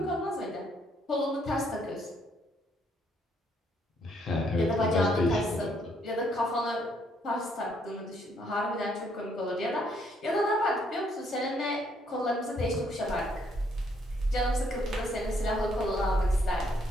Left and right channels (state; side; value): normal; both; correlation 0.70